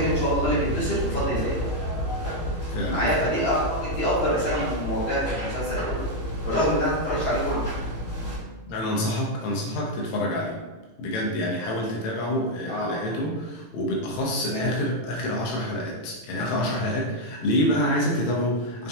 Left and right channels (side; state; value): right; late; 18 ms